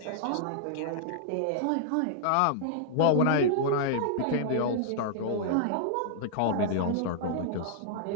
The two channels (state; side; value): different; both; correlation -0.01